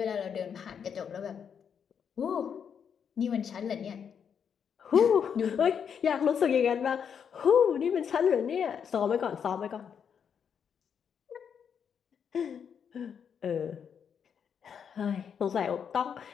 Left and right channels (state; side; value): quieter; right; 7.4 dB